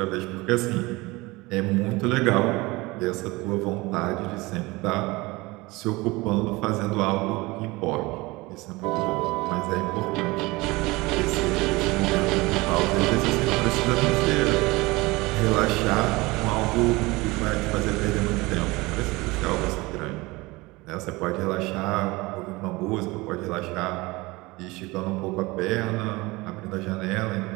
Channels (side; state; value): left; quieter; 22.4 dB